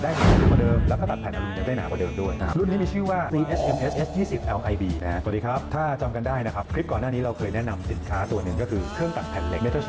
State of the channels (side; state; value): both; identical; correlation 1.00